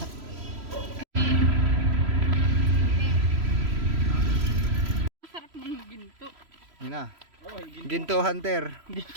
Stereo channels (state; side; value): late; left; 3.0 ms